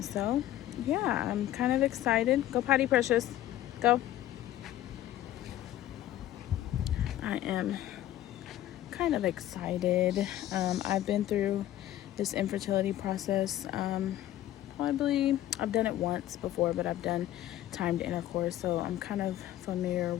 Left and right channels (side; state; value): right; quieter; 13.3 dB